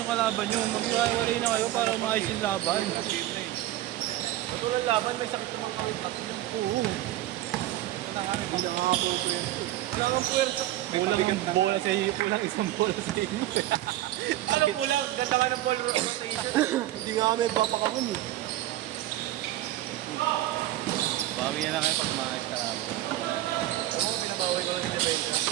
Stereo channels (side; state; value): left; quieter; 14.8 dB